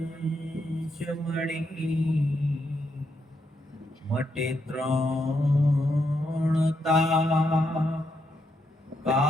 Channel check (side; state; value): both; normal; correlation 0.80